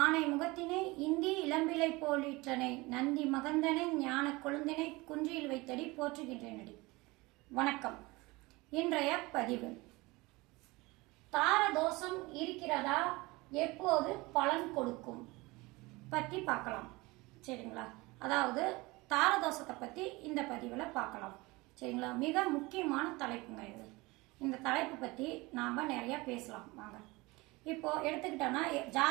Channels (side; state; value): left; quieter; 22.8 dB